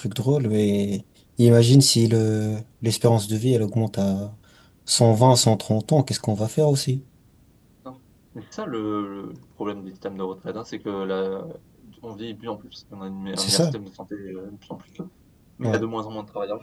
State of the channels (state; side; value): identical; both; correlation 1.00